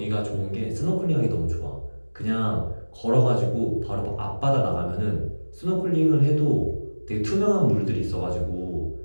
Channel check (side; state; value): both; inverted; correlation -1.00